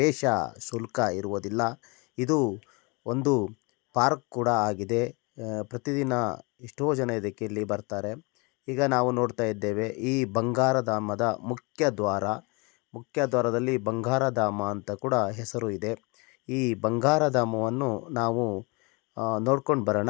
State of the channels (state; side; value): quieter; right; 29.0 dB